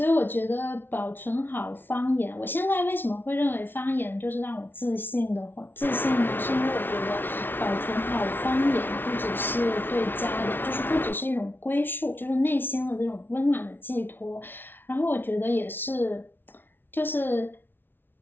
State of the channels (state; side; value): late; right; 0.10 ms